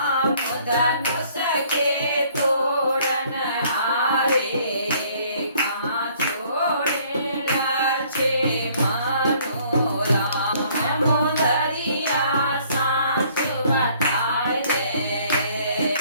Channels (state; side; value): inverted; both; correlation -0.60